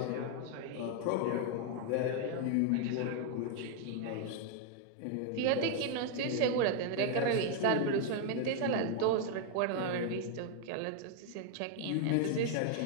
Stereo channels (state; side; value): different; both; correlation 0.01